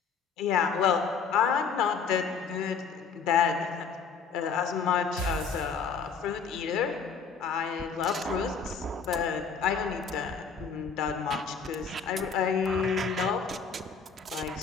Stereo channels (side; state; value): right; quieter; 5.8 dB